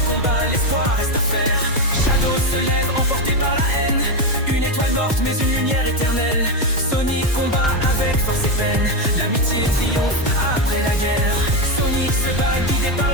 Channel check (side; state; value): both; normal; correlation 0.09